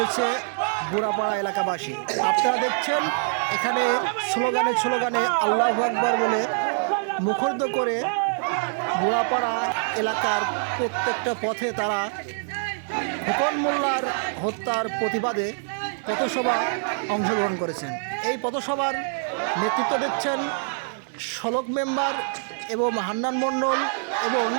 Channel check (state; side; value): silent; left; digital silence